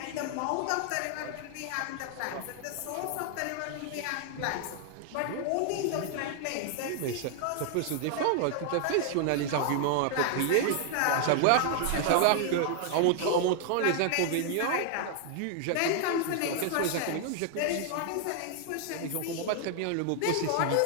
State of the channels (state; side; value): different; both; correlation 0.00